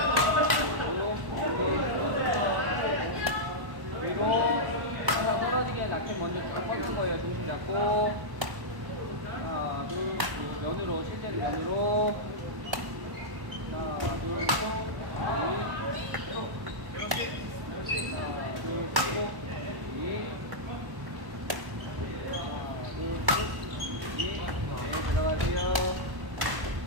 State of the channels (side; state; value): left; late; 1.1 ms